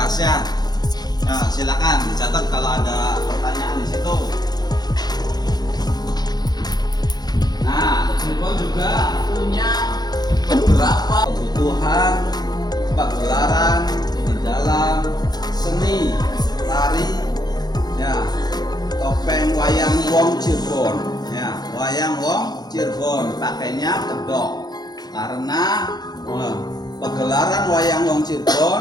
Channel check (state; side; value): late; right; 0.19 ms